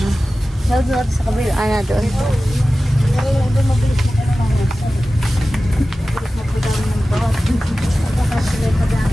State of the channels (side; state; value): both; normal; correlation 0.96